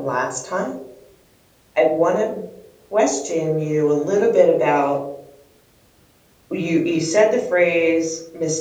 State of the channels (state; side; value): identical; both; correlation 1.00